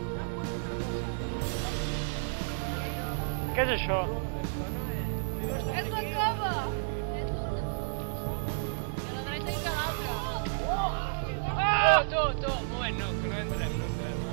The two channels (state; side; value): silent; left; digital silence